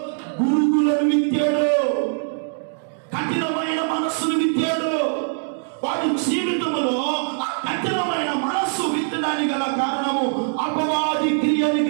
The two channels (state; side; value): silent; left; digital silence